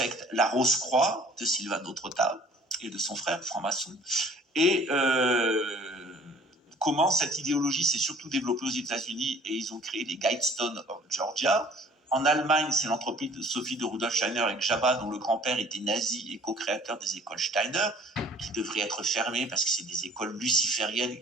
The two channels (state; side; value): normal; both; correlation 0.52